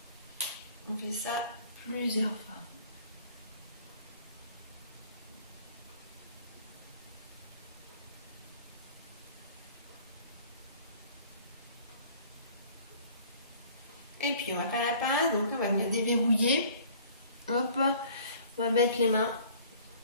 On fait ça plusieurs fois. Et puis on va faire la pince, donc on va venir déverrouiller. Hop, on va mettre les mains,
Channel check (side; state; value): both; inverted; correlation -0.52